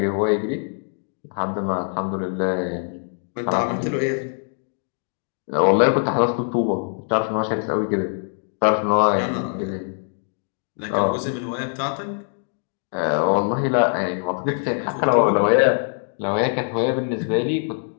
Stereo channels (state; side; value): silent; right; digital silence